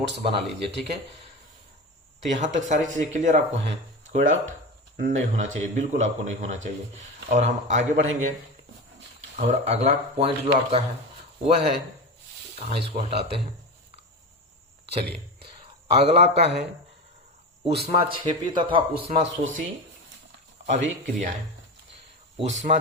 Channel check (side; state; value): both; normal; correlation 0.24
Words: बना लीजिए। ठीक है, तो यहां तक सारी चीजें क्लियर आपको हैं, कोई डाउट नहीं होना चाहिए, बिल्कुल आपको नहीं होना चाहिए। और हम आगे बढ़ेंगे और अगला पॉइंट जो आपका है वह है, कहाँ इसको हटाते हैं, चलिए अगला आपका है ऊष्मा क्षेपी तथा ऊष्मा शोषी अभिक्रियाएं।